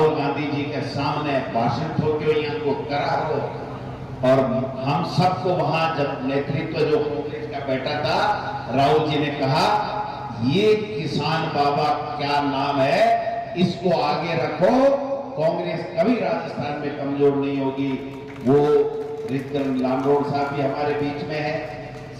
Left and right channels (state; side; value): identical; both; correlation 1.00